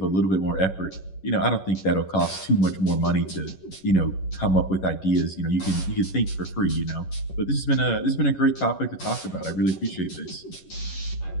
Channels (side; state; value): right; late; 11 ms